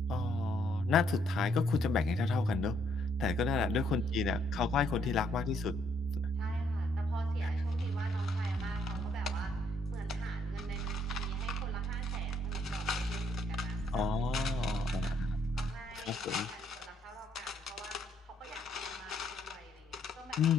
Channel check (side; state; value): both; normal; correlation 0.70